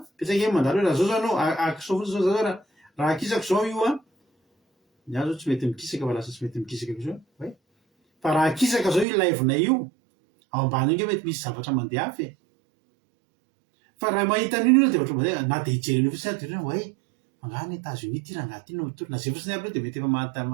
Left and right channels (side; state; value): left; drops out; at 9.1 s